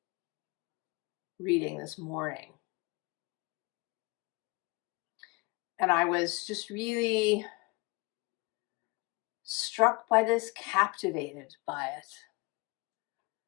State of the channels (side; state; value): right; quieter; 26.2 dB